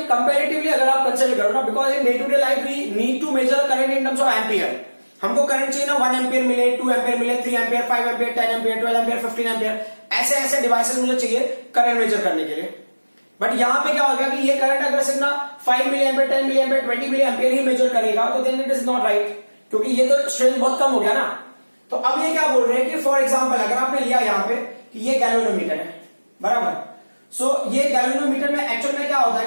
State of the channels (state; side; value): inverted; both; correlation -1.00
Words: कंपैरेटिवली अगर आप कंसीडर करो ना, because in day to day life we need to measure current in terms of ampere. हमको करंट चाहिए ना 1 एम्पियर मिले, 2 एम्पियर मिले, 3 ampere, 5 ampere, 10 ampere, 12 ampere, 15 ampere, ऐसे ऐसे डिवाइसेस मुझे चाहिए करंट मेजर करने के लिए. बट यहां पे क्या हो गया कि ये करंट अगर सिर्फ ना 5 मिली एम्पियर, 10 मिली एम्पियर, 20 मिली एम्पियर ही मेजर करेगा, तो then it is not right, क्योंकि ये तो स्ट्रेंथ बहुत कम हो गया ना. तो अब ये क्या बोल रहे हैं कि फॉर एग्जाम्पल अगर आपने लिया यहाँ पे कि ये गैल्वेनोमीटर है, बराबर. सो ये गैल्वेनोमीटर में एक्चुअल में क्या होता है